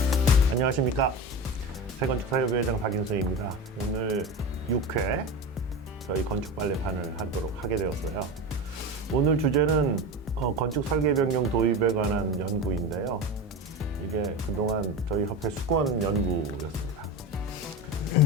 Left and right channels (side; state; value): both; normal; correlation 0.25